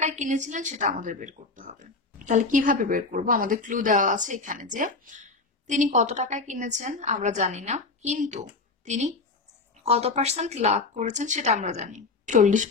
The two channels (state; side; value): quieter; right; 3.8 dB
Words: কিনেছিলেন সেটা আমাদের বের করতে হবে। তাহলে কিভাবে বের করব, আমাদের ক্লু দেওয়া আছে এখানে যে তিনি কত টাকায় কিনেছেন আমরা জানি না, কিন্তু তিনি কত পার্সেন্ট লাভ করেছেন সেটা আমরা জানি।